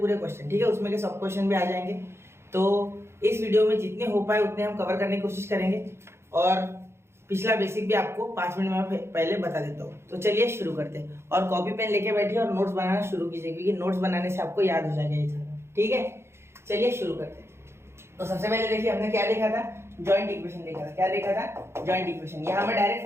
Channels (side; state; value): left; late; 0.12 ms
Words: ठीक है। उसमें के सब क्वेश्चन भी आ जाएंगे। तो इस वीडियो में जितने हो पाए उतने हम कवर करने की कोशिश करेंगे और पिछला बेसिक भी आपको 5 मिनट में पहले बता देता हूँ। तो चलिए शुरू करते हैं और कॉपी पेन लेके बैठिए और नोट्स बनाना शुरू कीजिए, क्योंकि नोट्स बनाने से आपको याद हो जाएगा ये सारा, ठीक है। चलिए शुरू करते हैं। तो सबसे पहले देखिए हमने क्या देखा था, जॉइंट इक्वेशन देखा था। क्या देखा था? Joint equation. यहाँ मैं डायरेक्ट